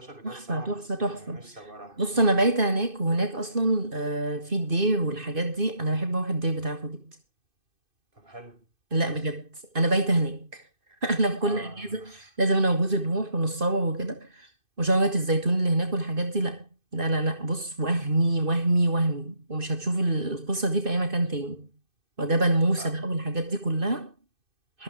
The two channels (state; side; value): late; left; 2.5 ms